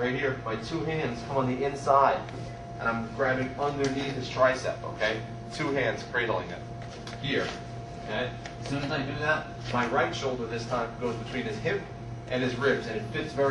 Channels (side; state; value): both; identical; correlation 1.00